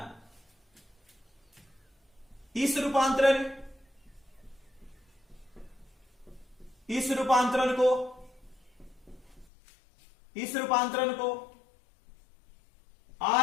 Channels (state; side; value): drops out; right; at 9.5 s